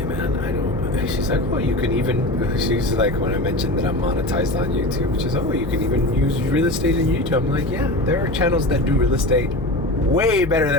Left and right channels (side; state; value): left; noise; hum, 8 dB below the sound